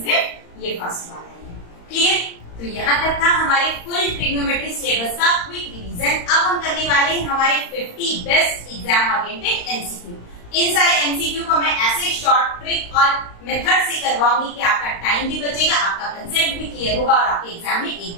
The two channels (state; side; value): late; right; 35 ms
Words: ये फर्स्ट वाला है। क्लियर? तो यहाँ तक था हमारे फुल ट्रिग्नोमेट्री सिलेबस का क्विक रिवीजन। अब हम करने वाले हैं हमारे 50 बेस्ट एग्जाम ओरिएंटेड एमसीक्यू। इन सारे एमसीक्यू को मैं ऐसे शॉर्ट ट्रिक और मेथड से करवाऊंगी कि आपका टाइम भी बचेगा, आपका कंसेप्ट भी क्लियर होगा और आपके एग्जाम में एक